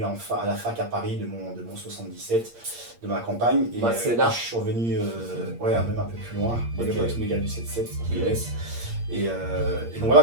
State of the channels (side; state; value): left; late; 8.6 ms